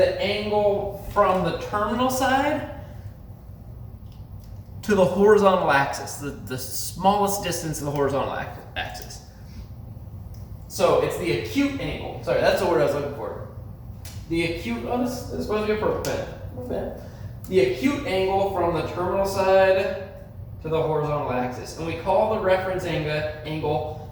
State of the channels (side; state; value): both; identical; correlation 1.00